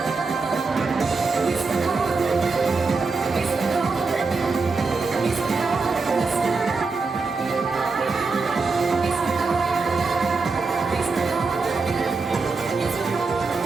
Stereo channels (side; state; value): left; quieter; 4.3 dB